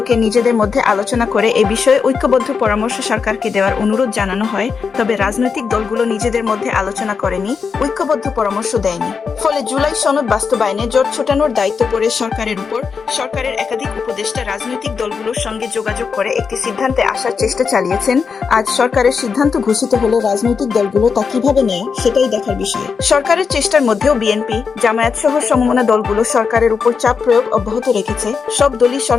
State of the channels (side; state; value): right; quieter; 5.6 dB